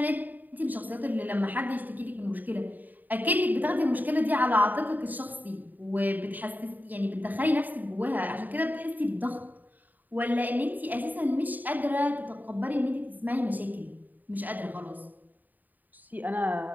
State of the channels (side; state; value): left; late; 0.085 ms